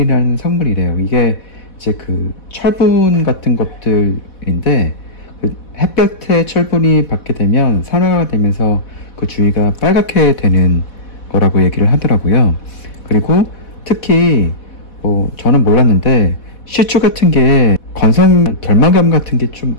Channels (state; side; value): late; right; 4.1 ms